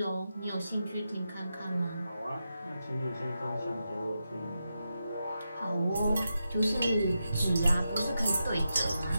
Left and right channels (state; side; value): inverted; both; correlation -0.88